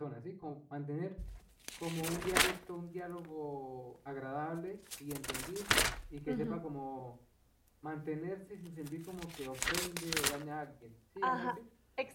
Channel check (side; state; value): both; identical; correlation 1.00